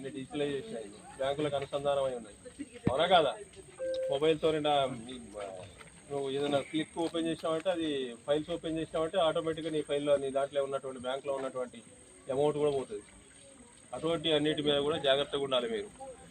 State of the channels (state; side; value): identical; both; correlation 1.00